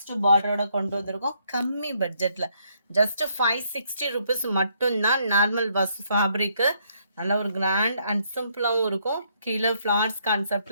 பார்டரோட கொண்டு வந்திருக்கோம். கம்மி பட்ஜெட்ல ஜஸ்ட் 560 ருபீஸ் மட்டும்தான். நார்மல் வாஸ் ஃபேப்ரிக்கு நல்ல ஒரு கிராண்ட் அண்ட் சிம்பிளாகவும் இருக்கும். கீழே ஃப்ளார்ஸ்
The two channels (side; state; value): both; inverted; correlation -0.71